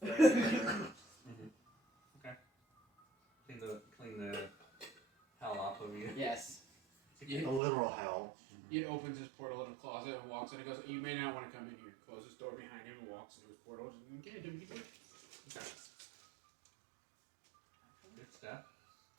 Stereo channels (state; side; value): drops out; left; at 7.6 s